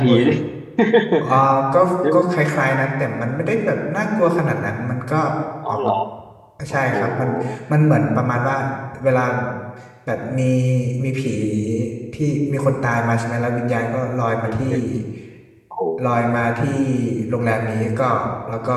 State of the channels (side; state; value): both; identical; correlation 1.00